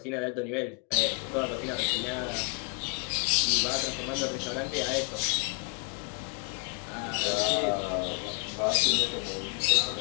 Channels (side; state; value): right; quieter; 37.0 dB